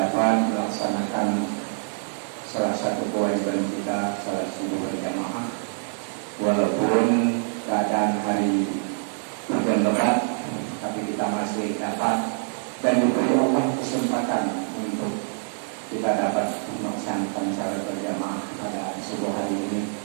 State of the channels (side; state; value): left; silent; digital silence